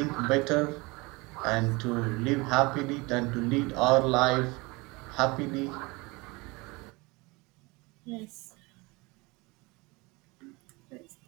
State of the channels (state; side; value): quieter; left; 25.0 dB